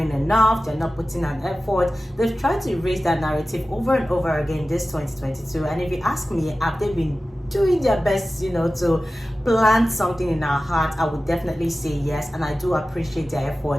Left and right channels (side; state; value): both; normal; correlation 0.95